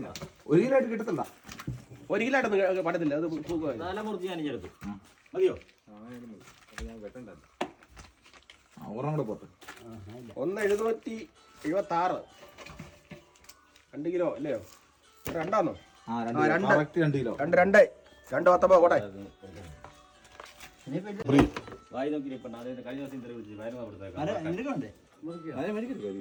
ആയിട്ട് കിട്ടത്തില്ല. 1 കിലോ ആയിട്ടൊന്നും പറ്റത്തില്ല. അത് മുറിച്ച് ഞാൻ എടുത്തു മതിയോ? ഒരെണ്ണം കൂടെ പോട്ടെ. 1,776 2 കിലോ അല്ലയോ? 2 2 കിലോ. 2 കോട്ടെ. വായി നോക്കി കഴിഞ്ഞ ദിവസം ഇന്റർവ്യൂ വിളിച്ചു വയറുന്ന കൊടുത്തേക്കാം.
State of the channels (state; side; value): identical; both; correlation 1.00